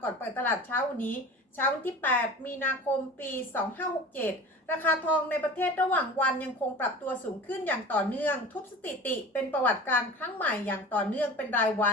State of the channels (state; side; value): normal; both; correlation 0.37